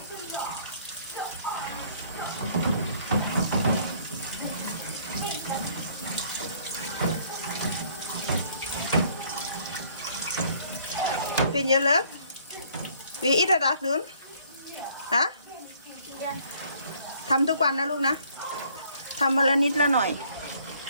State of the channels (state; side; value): inverted; both; correlation -0.61